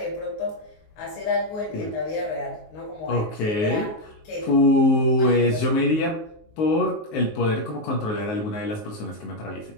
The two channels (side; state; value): right; late; 19 ms